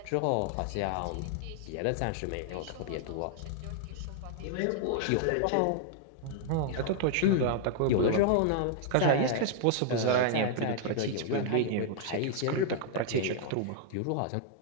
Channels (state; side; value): different; both; correlation -0.01